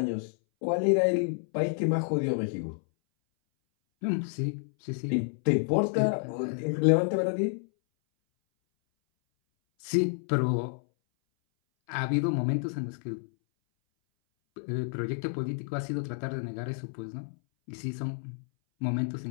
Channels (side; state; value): right; silent; 58 dB below the other